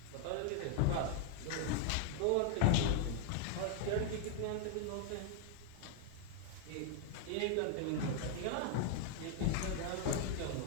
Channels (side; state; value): both; different; correlation 0.00